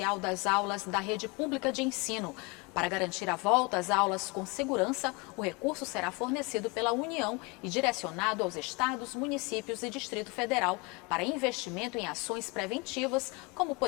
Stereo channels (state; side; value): quieter; right; 27.6 dB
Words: das aulas da rede pública de ensino. Para garantir a volta às aulas com segurança, o recurso será fornecido pela União e direcionado aos estados, municípios e Distrito Federal para investimento em ações preventivas, como,